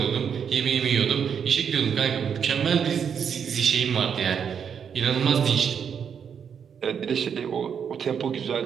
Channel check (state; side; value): quieter; left; 7.4 dB